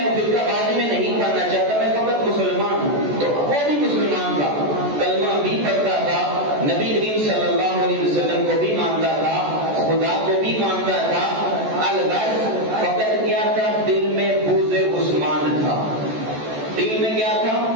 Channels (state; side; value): late; left; 14 ms